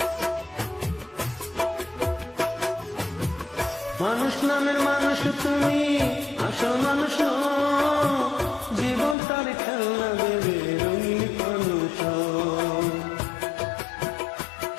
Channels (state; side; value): drops out; right; at 9.2 s